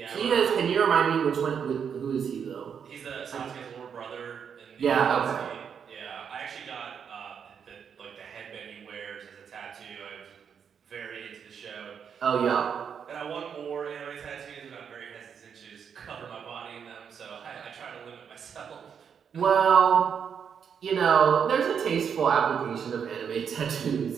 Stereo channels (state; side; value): quieter; left; 7.3 dB